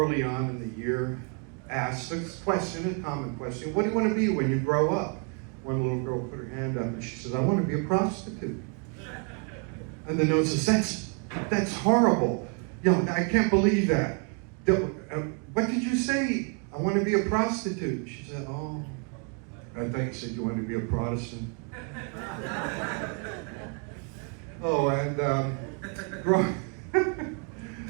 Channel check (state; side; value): quieter; left; 38.3 dB